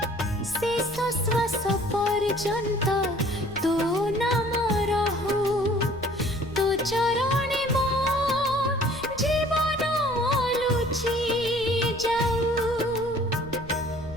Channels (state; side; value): noise; left; rumble, 17 dB below the sound